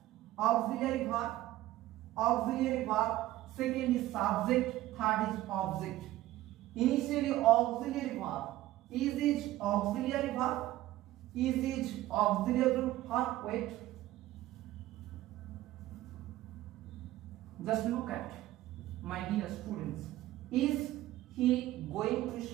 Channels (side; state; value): left; quieter; 15.6 dB